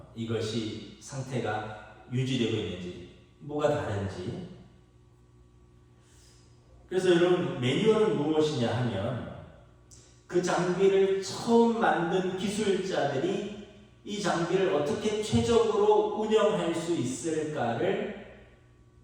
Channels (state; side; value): identical; both; correlation 1.00